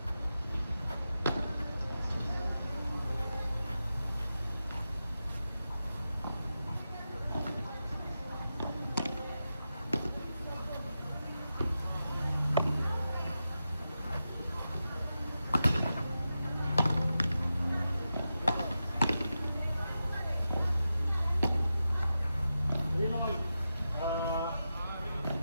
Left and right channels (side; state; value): both; inverted; correlation -0.90